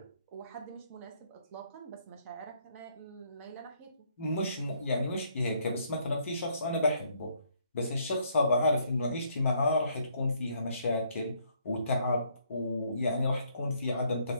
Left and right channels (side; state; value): both; inverted; correlation -0.69